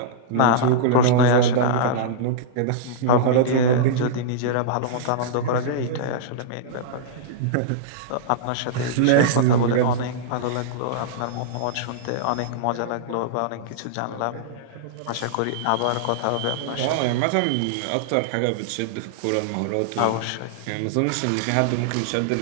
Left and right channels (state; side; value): different; both; correlation -0.02